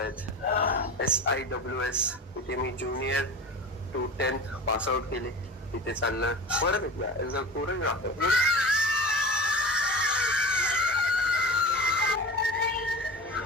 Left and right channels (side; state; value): both; normal; correlation 0.32